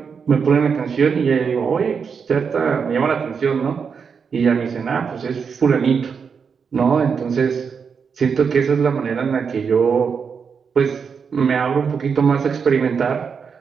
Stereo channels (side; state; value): left; quieter; 6.1 dB